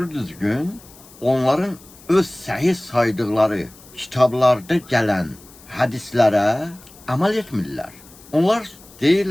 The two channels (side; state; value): left; noise; hiss, 23 dB below the sound